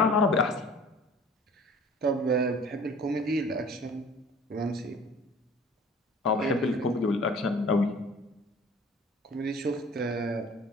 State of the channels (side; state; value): both; normal; correlation 0.48